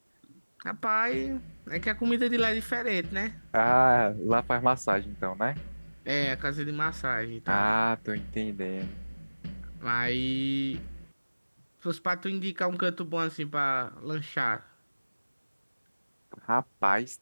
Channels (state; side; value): inverted; both; correlation -1.00